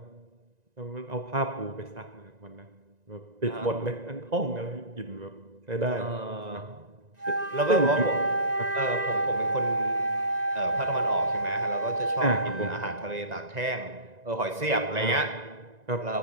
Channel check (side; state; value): left; late; 1.9 ms